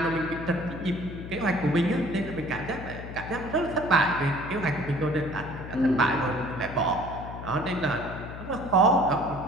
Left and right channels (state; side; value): noise; left; hum, 10 dB below the sound